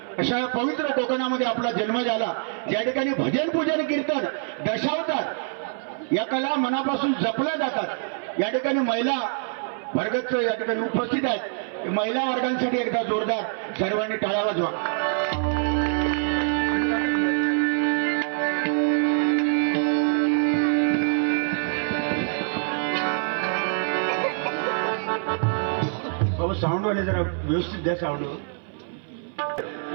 अशा पवित्र कोकणामध्ये आपला जन्म झाला, ज्या ठिकाणी भजन पूजन कीर्तन दशावतात या कला मनापासून जपल्या जातात। या ठिकाणी महिला वर्गच या ठिकाणी उपस्थित आहेत। महिला वर्गांसाठी एकदा जोरदार सर्वांनी टाळ्या वाजवा। बाबा साऊंड वाले जरा व्यवस्थित द्या साऊंड।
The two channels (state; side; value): silent; left; 58 dB below the other